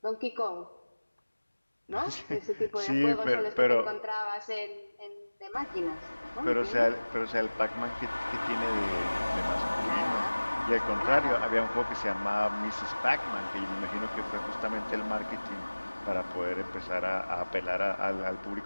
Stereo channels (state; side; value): inverted; both; correlation -1.00